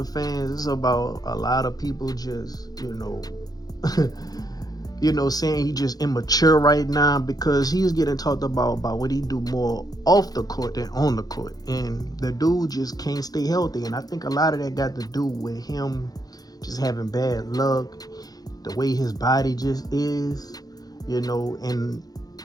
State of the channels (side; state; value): right; late; 0.19 ms